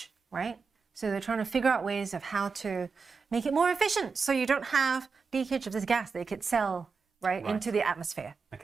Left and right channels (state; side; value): quieter; left; 5.0 dB